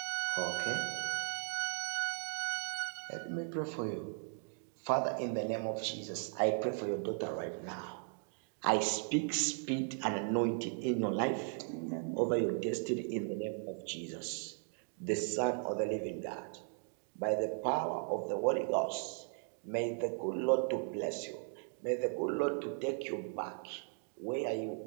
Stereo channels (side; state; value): left; silent; 53 dB below the other